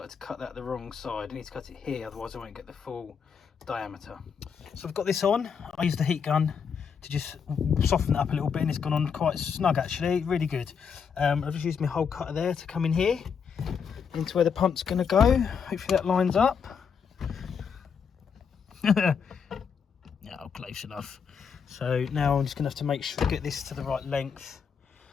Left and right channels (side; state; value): right; quieter; 6.6 dB